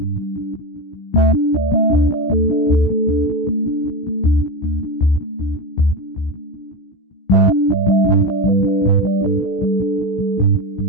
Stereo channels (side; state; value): right; late; 16 ms